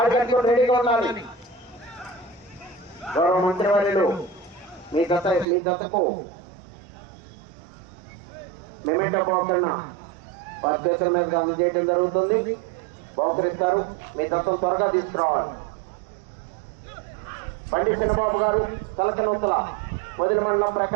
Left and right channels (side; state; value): left; drops out; at 5.5 s